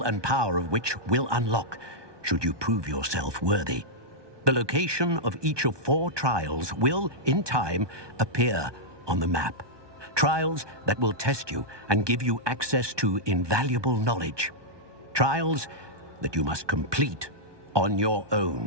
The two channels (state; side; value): late; left; 1.2 ms